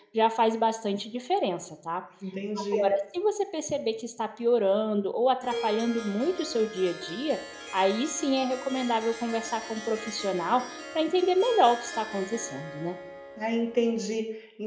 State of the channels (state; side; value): identical; both; correlation 1.00